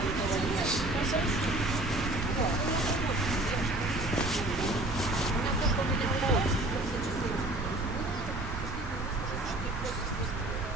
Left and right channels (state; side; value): noise; right; rumble, 6 dB below the sound